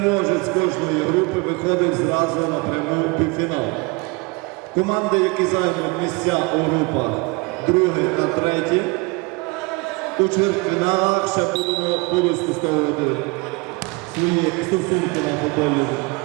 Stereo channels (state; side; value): quieter; left; 27.0 dB